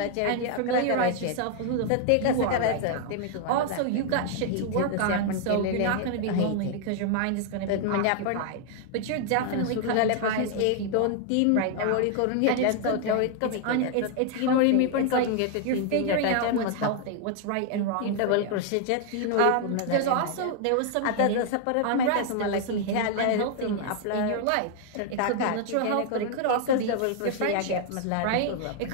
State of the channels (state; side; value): different; both; correlation 0.00